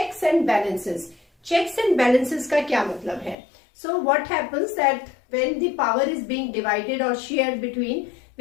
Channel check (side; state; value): right; drops out; at 3.4 s